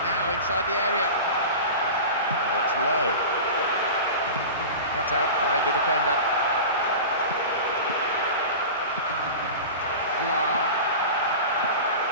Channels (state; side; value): inverted; both; correlation -0.32